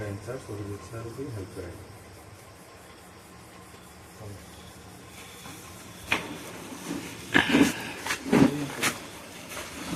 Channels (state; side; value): identical; both; correlation 1.00